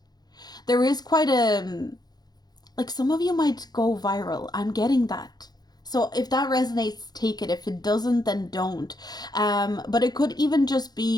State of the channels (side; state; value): right; late; 0.19 ms